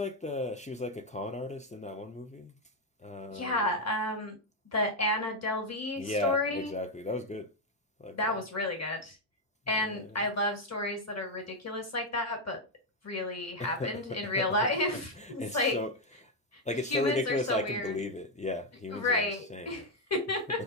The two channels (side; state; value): both; normal; correlation 0.02